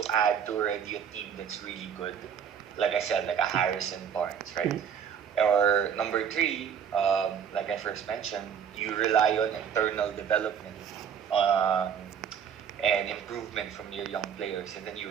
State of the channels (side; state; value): left; quieter; 7.9 dB